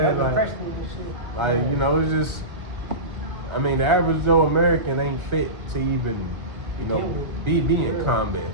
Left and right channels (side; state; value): left; late; 1.5 ms